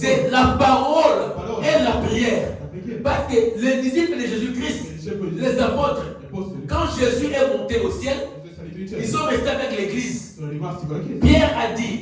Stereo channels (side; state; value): both; identical; correlation 1.00